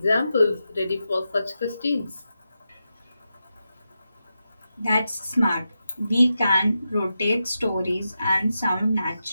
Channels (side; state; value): both; inverted; correlation -0.89